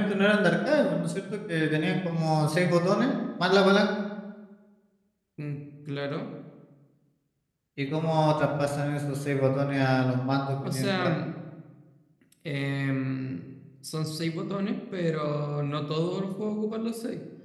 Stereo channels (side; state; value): both; identical; correlation 1.00